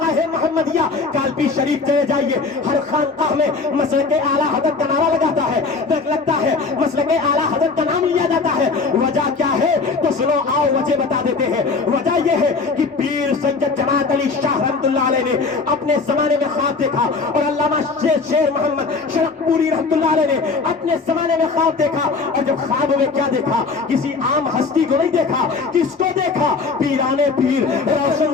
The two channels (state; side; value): quieter; right; 4.3 dB